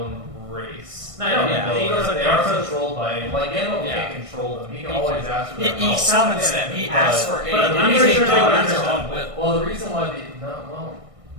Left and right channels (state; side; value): late; left; 1.6 ms